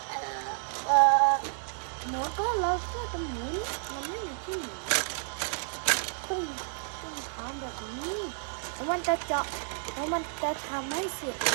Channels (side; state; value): left; silent; 57 dB below the other